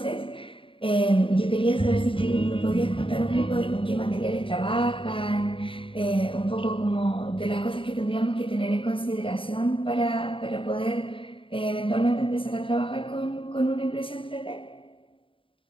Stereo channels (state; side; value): late; right; 0.25 ms